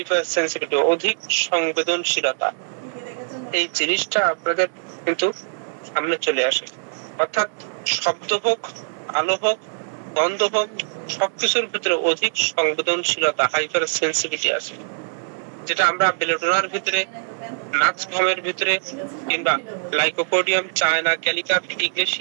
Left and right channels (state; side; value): silent; left; digital silence